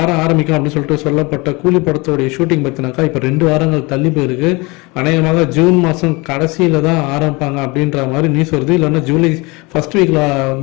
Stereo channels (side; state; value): right; quieter; 25.7 dB